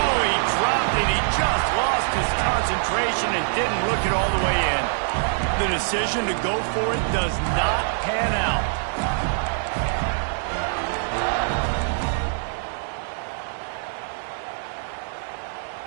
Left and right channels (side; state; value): left; silent; 63 dB below the other